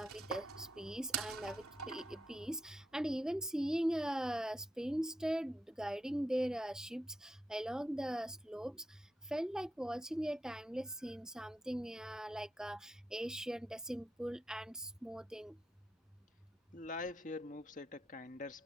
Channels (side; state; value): both; normal; correlation 0.86